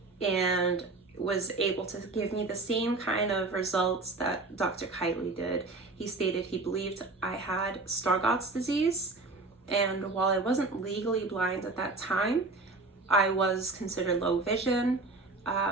and was able to give me the same kind of results that Dr. Kitely did. He stated he believed I had Stargardt's disease, and while I wasn't legally blind at that time, I was considered low vision,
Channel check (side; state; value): left; quieter; 3.4 dB